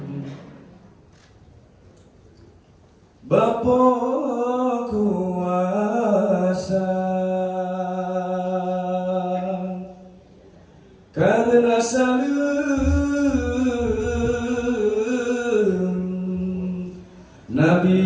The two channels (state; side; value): identical; both; correlation 1.00